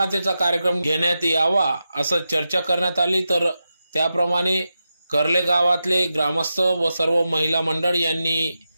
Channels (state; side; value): inverted; both; correlation -0.90